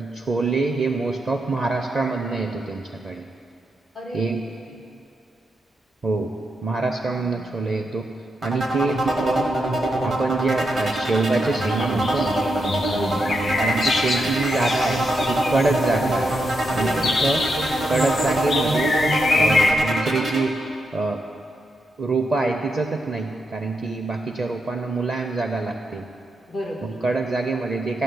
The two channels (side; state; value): both; normal; correlation 0.83